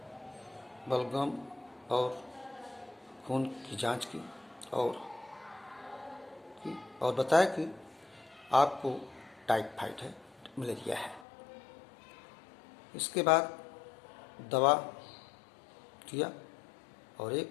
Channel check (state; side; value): drops out; right; at 11.2 s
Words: और खून की जांच की और बताया कि आपको टाइफाइड है, मलेरिया है। इसके बाद दवा दिया और